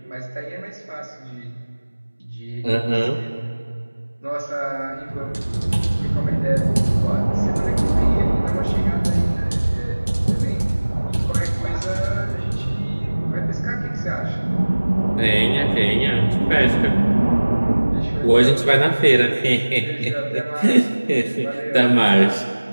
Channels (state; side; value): inverted; both; correlation -1.00